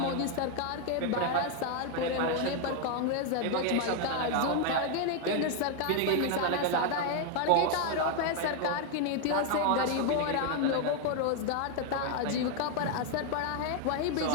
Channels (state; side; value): different; both; correlation 0.01